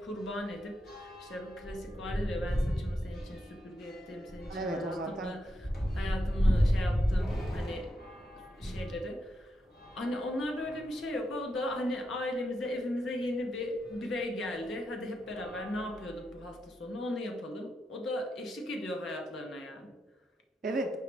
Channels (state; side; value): normal; both; correlation 0.84